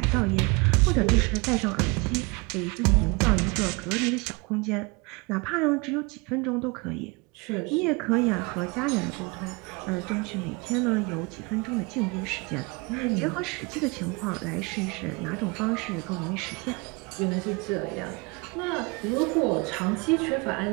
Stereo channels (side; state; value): left; quieter; 28.0 dB